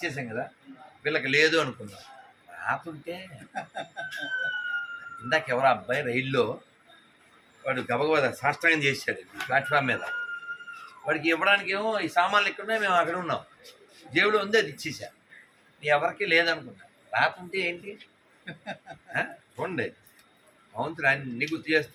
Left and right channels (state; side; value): identical; both; correlation 1.00